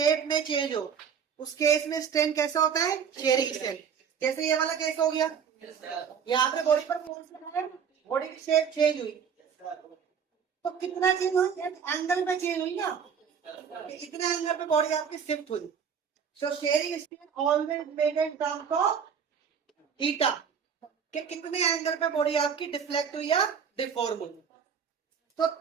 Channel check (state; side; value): quieter; left; 7.2 dB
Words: में चेंज हो, उस केस में स्ट्रेन कैसा होता है, शेयरिंग स्ट्रेन। जैसे ये वाला केस हो गया, यहाँ पे बॉडी पर फोर्स लगाया, बॉडी की शेप चेंज हुई, तो कितना चेंज हुई, एंगल में चेंज हुई ना, इतने एंगल पे बॉडी आपकी शिफ्ट हुई। सो sharing strain always made in terms of theta, कि कितने एंगल पे बॉडी आपकी डिफ्लेक्ट हुई या डिफॉर्म हुई। तो